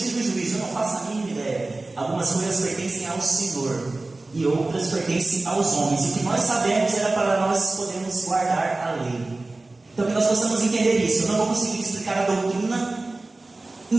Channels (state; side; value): quieter; left; 3.1 dB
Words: e do juízo. Eu não faço a mínima ideia. Algumas coisas pertencem ao Senhor e outras pertencem aos homens. E o que nós sabemos era para nós podermos guardar a lei. Então que nós possamos entender isso. Eu não vou conseguir explicar a doutrina